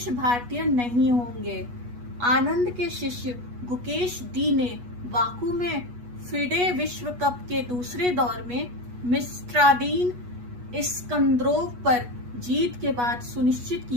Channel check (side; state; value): left; late; 8.3 ms